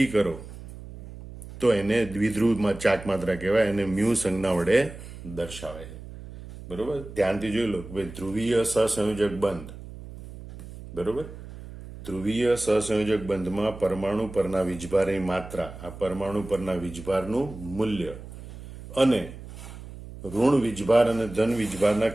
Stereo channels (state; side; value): noise; right; hum, 14 dB below the sound